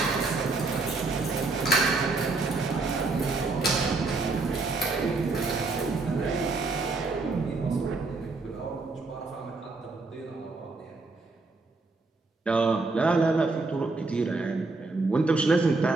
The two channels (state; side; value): quieter; left; 3.6 dB